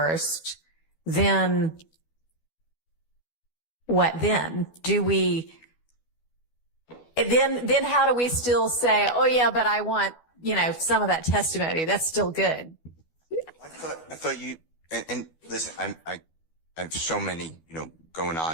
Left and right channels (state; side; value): late; right; 12 ms